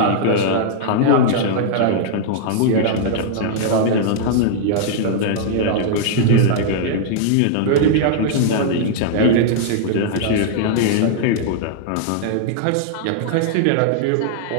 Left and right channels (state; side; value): different; both; correlation -0.01